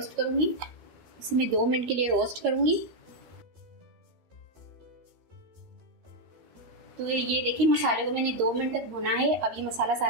करूंगी। इसे मैं 2 मिनट के लिए रोस्ट करूंगी। तो ये देखिए मसाले को मैंने 2 मिनट तक भुना है। अब ये मसाला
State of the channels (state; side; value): late; left; 13 ms